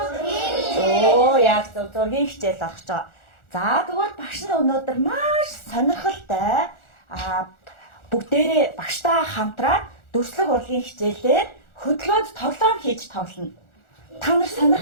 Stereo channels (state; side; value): late; right; 1.4 ms